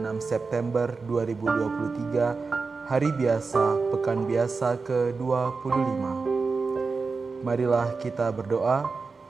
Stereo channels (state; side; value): quieter; left; 4.4 dB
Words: September 2023, hari biasa, pekan biasa ke-25. Marilah kita berdoa